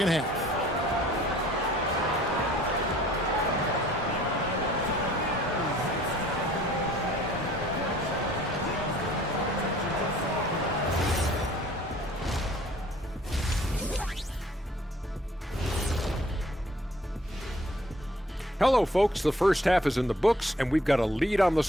half. Hello, folks. The first half is in the books, and we've got a lead on the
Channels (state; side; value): normal; both; correlation 0.56